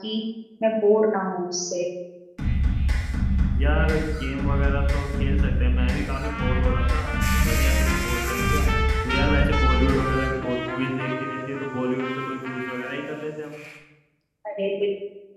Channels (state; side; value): identical; both; correlation 1.00